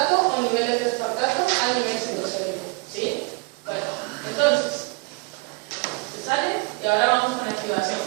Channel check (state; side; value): quieter; left; 28.2 dB